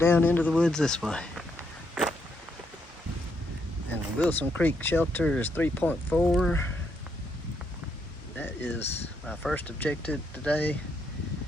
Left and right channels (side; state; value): both; normal; correlation 0.76